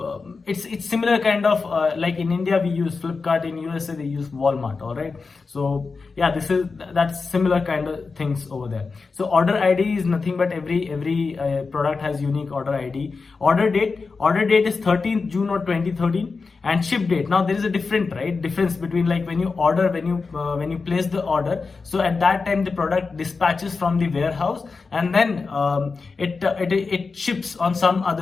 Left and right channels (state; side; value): quieter; right; 4.5 dB